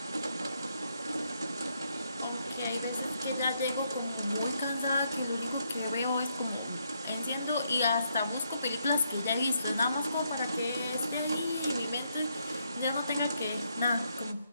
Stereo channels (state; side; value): inverted; both; correlation -0.77